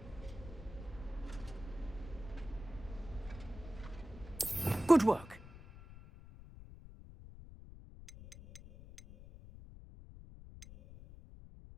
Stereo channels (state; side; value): noise; left; rumble, 15 dB below the sound